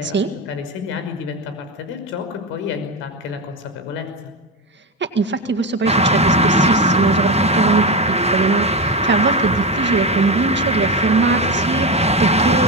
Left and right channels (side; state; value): both; normal; correlation 0.16